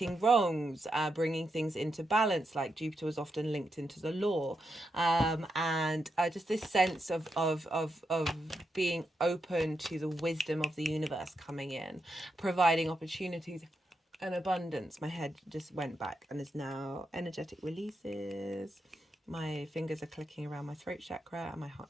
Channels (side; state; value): both; normal; correlation 0.84